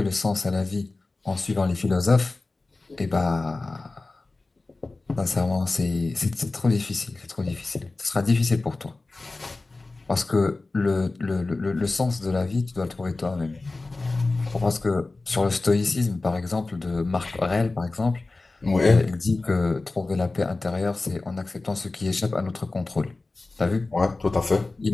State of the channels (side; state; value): right; quieter; 3.4 dB